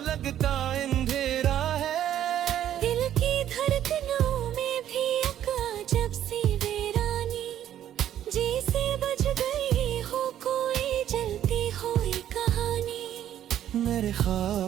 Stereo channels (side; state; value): left; quieter; 11.1 dB